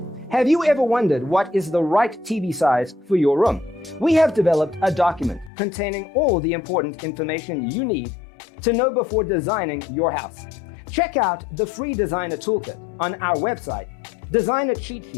Have you ever wondered what is the right TV size for your room? We have developed a document containing all the important information you need to know before designing your house. Check out the free designer toolkit on our website,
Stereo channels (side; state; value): right; drops out; at 5.5 s